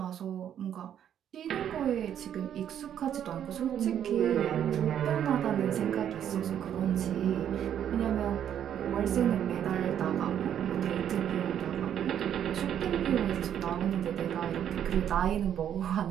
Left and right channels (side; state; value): left; quieter; 9.7 dB